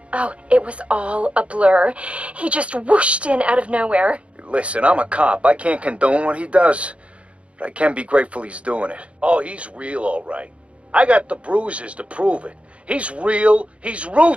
Oh, it was all a blur. He just whooshed in out of nowhere. Listen, I'm a cop. I can't condone what he does, but I can be grateful he's doing it. Oh, he's real, all right. I got the bruises to prove it. He's real, he's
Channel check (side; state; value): left; late; 0.061 ms